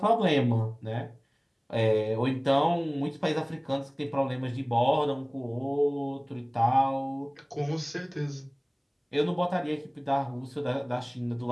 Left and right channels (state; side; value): identical; both; correlation 1.00